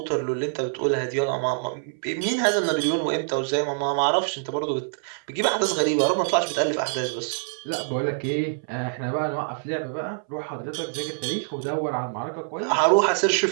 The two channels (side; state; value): left; silent; 62 dB below the other